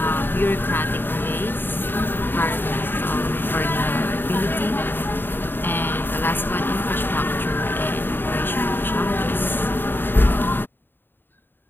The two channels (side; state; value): right; late; 0.096 ms